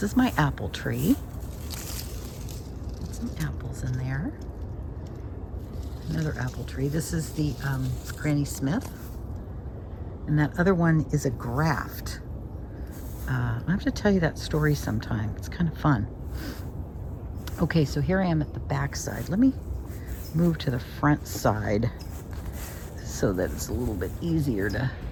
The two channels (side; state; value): both; identical; correlation 1.00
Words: is my apple tree. Got some apples in there. Another apple tree. This is the Granny Smith. And that other one is a graft. I have to tell you that story sometime. It's kind of fun. Okay, so here I am at the back side. Let me move to the front side so that it's a little bit easier to